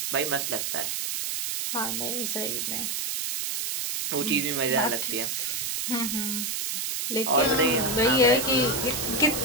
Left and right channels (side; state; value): right; noise; hiss, 2 dB below the sound